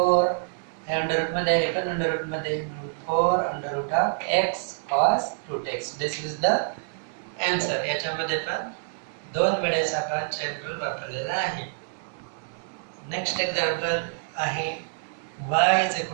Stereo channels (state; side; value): silent; left; 60 dB below the other